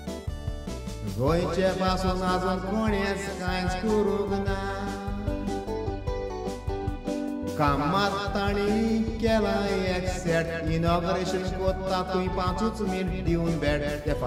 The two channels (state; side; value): identical; both; correlation 1.00